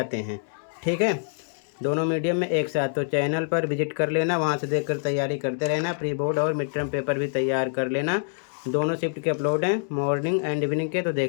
हैं। ठीक है, दोनों मीडियम में एक साथ। तो चैनल पर विजिट कर लेना, वहाँ से देखकर तैयारी करते रहना। प्री बोर्ड और मिड टर्म पेपर भी तैयार कर लेना। दोनों शिफ्ट के अपलोड हैं, मॉर्निंग एंड इवनिंग के, तो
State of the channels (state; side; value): silent; right; digital silence